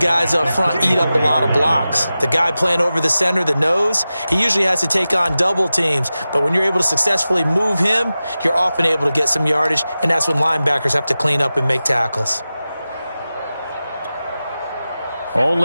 up front eat up a lot of blocks. The guy playing over the center, the nose, he usually has to take on double teams. But when you're able to successfully move him, you're often able to get some yardage. And that's when linebackers have to clean up and make tackles.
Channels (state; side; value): inverted; both; correlation -0.94